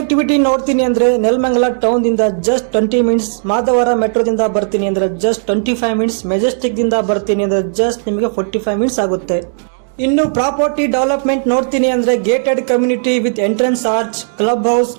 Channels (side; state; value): left; silent; digital silence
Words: ನೋಡ್ತೀನಿ ಅಂದ್ರೆ ನೆಲಮಂಗಲ ಟೌನ್ ದಿಂದ ಜಸ್ಟ್ 20 ಮಿನಿಟ್ಸ್, ಮಾಧವರ ಮೆಟ್ರೋದಿಂದ ಬರ್ತೀನಿ ಅಂದ್ರೆ ಜಸ್ಟ್ 25 ಮಿನಿಟ್ಸ್, ಮೆಜೆಸ್ಟಿಕ್ ದಿಂದ ಬರ್ತೀನಿ ಅಂದ್ರೆ ಜಸ್ಟ್ ನಿಮಗೆ 45 ಮಿನಿಟ್ಸ್ ಆಗುತ್ತೆ. ಇನ್ನು ಪ್ರಾಪರ್ಟಿ ಡೆವಲಪ್ಮೆಂಟ್ ನೋಡ್ತೀನಿ ಅಂದ್ರೆ gated community with entrance arch, club house,